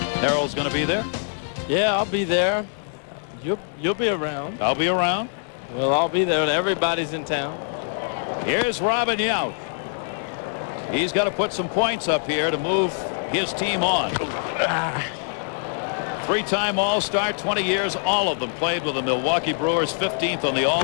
Harold's going to be there? Yeah, I'll be there. You'll be around. I'll be around. Well, I'll be there. Everybody's in town. Here's Robin Yount. He's got to put some points up here to move his team on. Three-time All-Star, 20 years, all of them played with the Milwaukee Brewers, 15th on the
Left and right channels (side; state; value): right; silent; digital silence